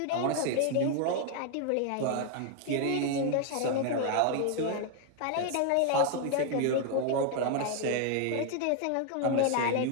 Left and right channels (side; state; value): both; different; correlation 0.00